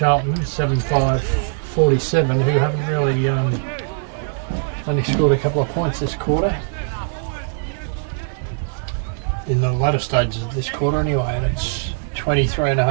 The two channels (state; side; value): silent; left; digital silence